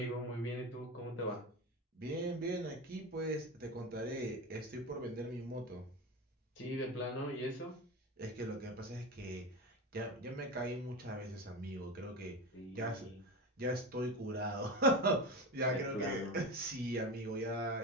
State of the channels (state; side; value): normal; both; correlation 0.24